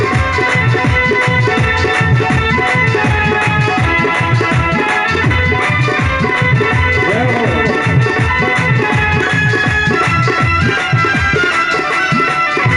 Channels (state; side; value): identical; both; correlation 1.00